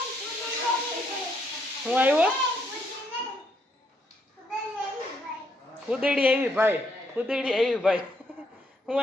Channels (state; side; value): normal; both; correlation 0.74